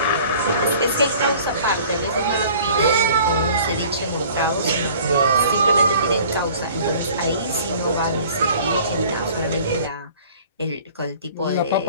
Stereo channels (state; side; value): inverted; both; correlation -0.50